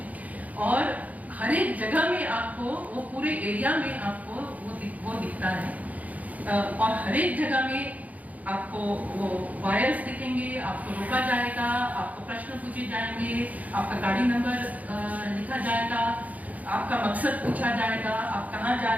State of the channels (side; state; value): left; late; 0.075 ms